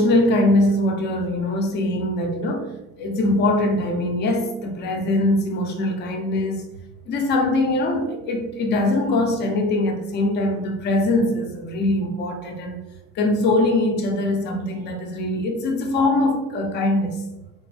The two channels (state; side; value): normal; both; correlation 0.41